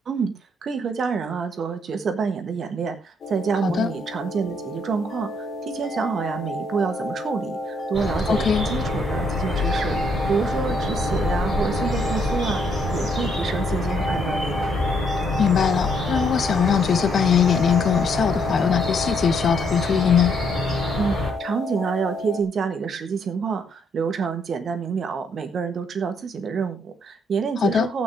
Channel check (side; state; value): both; normal; correlation 0.70